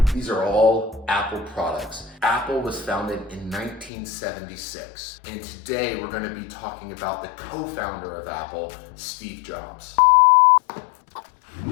These are all Apple products. Apple was founded in 1976, and today we're going to be talking about the co-founder of Apple, Steve Jobs.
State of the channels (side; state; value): right; drops out; at 3.9 s